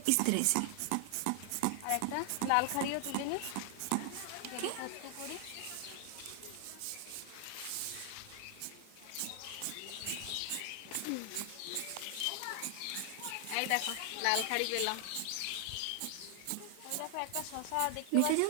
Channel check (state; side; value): different; both; correlation 0.00